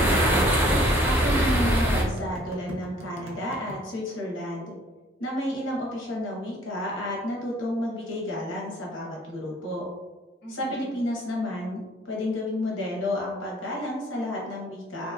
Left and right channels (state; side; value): normal; both; correlation 0.58